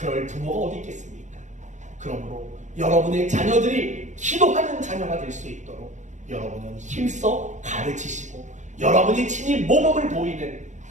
부모가 어디 있겠습니까? 그러므로 여러분의 자녀들이 기도하는 자녀가 될 수 있도록 여러분은 힘써 가르치시고 여러분이 친히 모범을 보이는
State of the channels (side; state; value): left; late; 0.35 ms